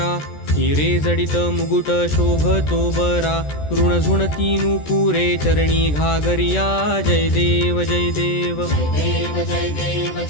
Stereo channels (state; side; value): late; right; 14 ms